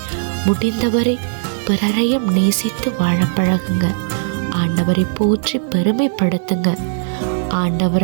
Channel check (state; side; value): silent; left; digital silence